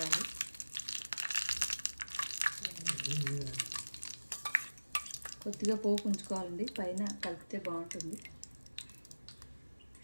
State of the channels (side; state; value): both; inverted; correlation -1.00